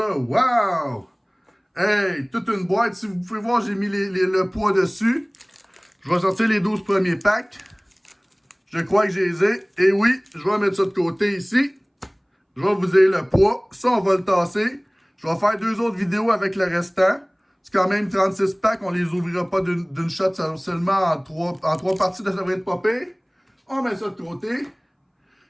Wow! Hey, toute une boîte. Si vous pouvez voir, j'ai mis le poids dessus. Je vais sortir les 12 premiers packs. Je crois que je les ai. Et oui, je vais mettre ça de côté ici. Je vais vous dire le poids. Ça, on va le tasser. Je vais faire 2 autres vidéos avec le restant. C'est quand même 36 packs. On les ouvrira pas d'une shot seulement en 3 parties. Ça devrait être pas pire. On met ça de côté.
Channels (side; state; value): both; identical; correlation 1.00